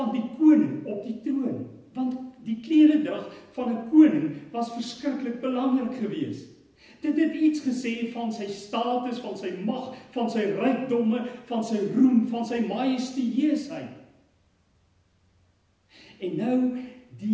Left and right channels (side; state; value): both; identical; correlation 1.00